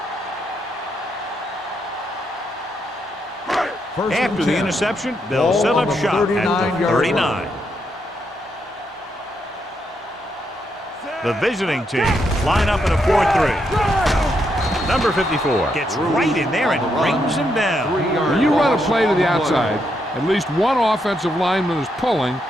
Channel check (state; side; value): normal; both; correlation 0.79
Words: After the interception, they'll set up shop at the 39. The visiting team line up in a 4-3. Number 54 gets right in there and brings him down. When you run a play to the outside, at least one offensive lineman is pulling,